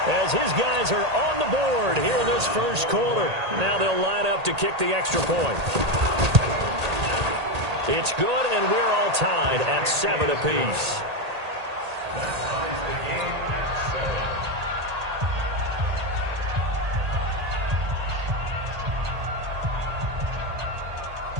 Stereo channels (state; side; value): late; left; 1.8 ms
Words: as his guys are on the board here in this first quarter. Now they'll line up to kick the extra point. It's good, and we're all tied at 7 apiece.